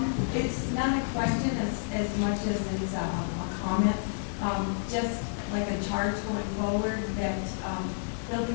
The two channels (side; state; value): right; silent; digital silence